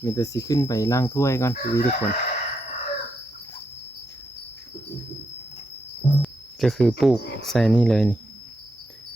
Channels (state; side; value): normal; both; correlation 0.82